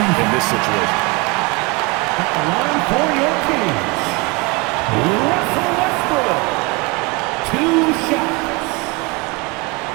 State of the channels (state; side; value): quieter; left; 25.8 dB